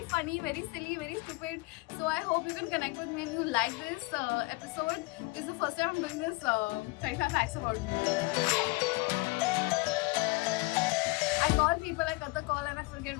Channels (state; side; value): quieter; right; 24.9 dB